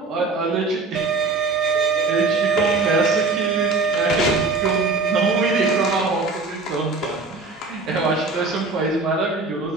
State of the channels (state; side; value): quieter; left; 3.7 dB